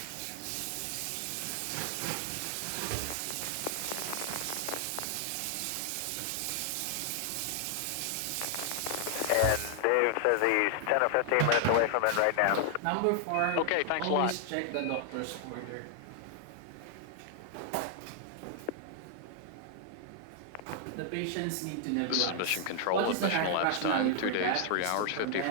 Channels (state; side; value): different; both; correlation 0.00